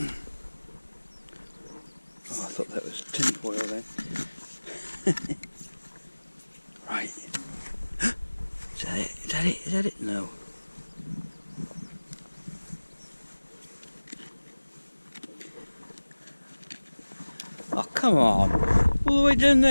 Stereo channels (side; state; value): both; inverted; correlation -1.00